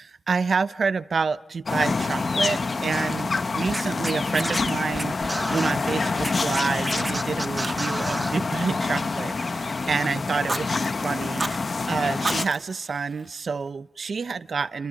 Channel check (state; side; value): normal; both; correlation 0.90